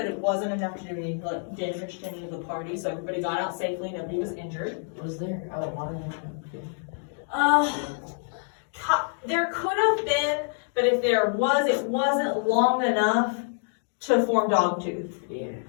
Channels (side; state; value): right; silent; 60 dB below the other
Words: it wasn't enough to do any damage to any of the party, so everybody got out safely, nobody was injured. Was there water? There could have been, but if there was, it wasn't long enough to form dogtooth. Yeah.